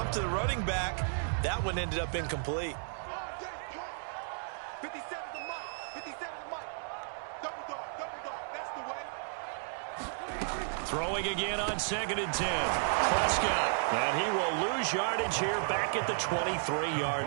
to the running back. That one ended up incomplete. 57 to Mike. 57 to Mike. Double dog. That's the way. Throwing again on 2nd and 10. Prescott. And he will lose yardage here back at the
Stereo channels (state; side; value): silent; left; digital silence